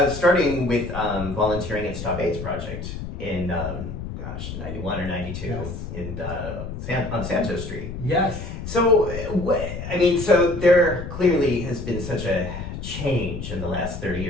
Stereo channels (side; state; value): left; noise; rumble, 8 dB below the sound